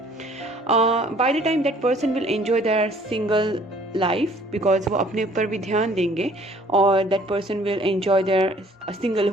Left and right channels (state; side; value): normal; both; correlation 0.57